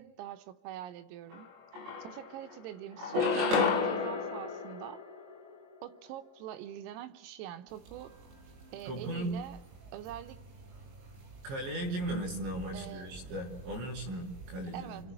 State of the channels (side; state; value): left; late; 22 ms